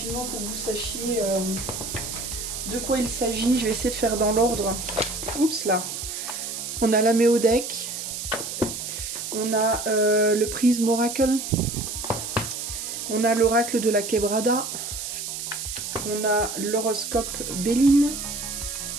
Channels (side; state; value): right; noise; hiss, 6 dB below the sound